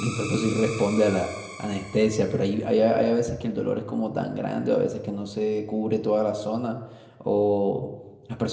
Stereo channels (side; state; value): both; identical; correlation 1.00